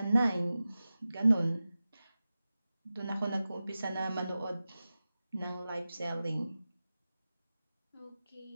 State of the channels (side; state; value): both; inverted; correlation -0.95